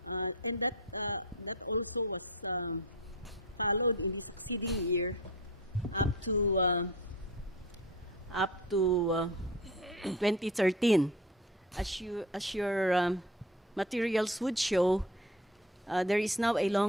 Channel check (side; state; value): both; normal; correlation 0.35